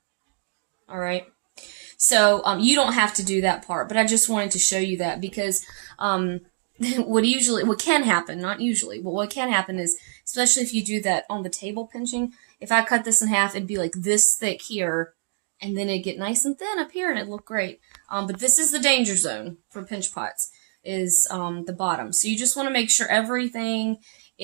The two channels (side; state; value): left; silent; digital silence